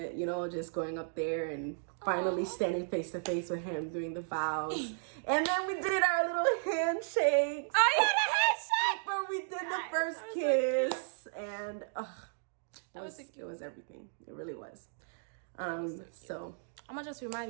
you know, just going up there and finally standing face to face with him doing the vows. And then we did our little handshakes. Oh yeah, the handshake! Where we did the first kiss. And it was everything. It really was. So I'm gonna just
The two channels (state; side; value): silent; left; digital silence